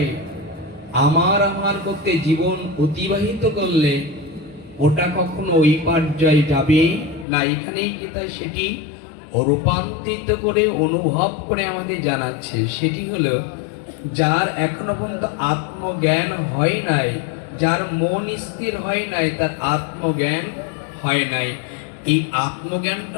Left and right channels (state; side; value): drops out; right; at 7.2 s